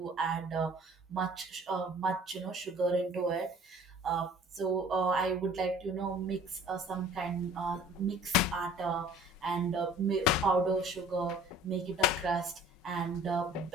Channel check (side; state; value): both; normal; correlation 0.51